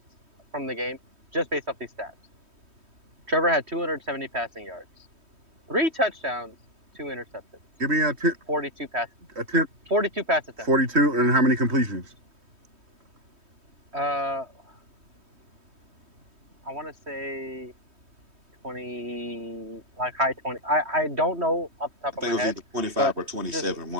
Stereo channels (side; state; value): left; late; 3.1 ms